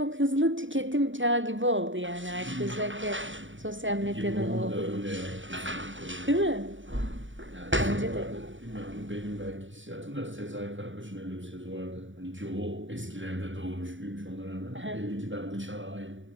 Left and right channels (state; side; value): late; left; 0.56 ms